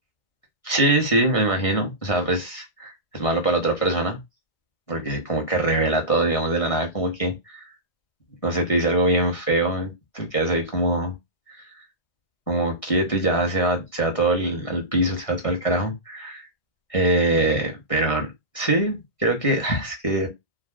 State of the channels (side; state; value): right; late; 1.6 ms